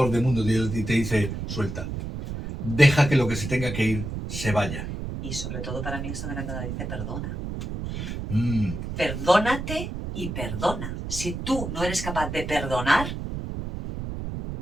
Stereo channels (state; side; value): noise; right; rumble, 6 dB below the sound